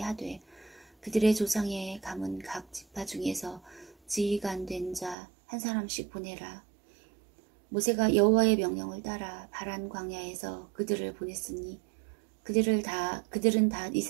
하되 그들의 조상의 가문 각 지파 중에서 지휘관 된 자 한 사람씩 보내라. 모세가 여호와의 명령을 따라 바란 광야에서 그들을 보냈으니 그들은 다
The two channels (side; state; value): left; drops out; at 5.2 s